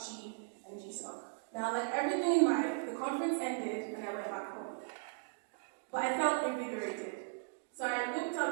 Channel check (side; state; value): left; silent; digital silence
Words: and GSOC. Now, like everything in life, the conference ended and I went back home. But I felt invigorated. So I looked